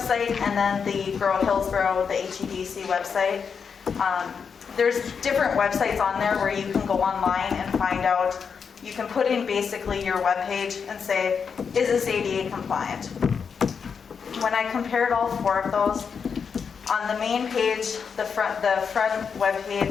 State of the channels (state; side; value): quieter; right; 6.2 dB